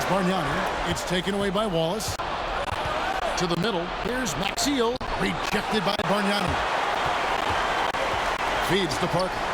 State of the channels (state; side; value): identical; both; correlation 1.00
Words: Bargnani. It's taken away by Wallace. To the middle. Here's Maxiel. Rejected by Bargnani. Feeds to Parker.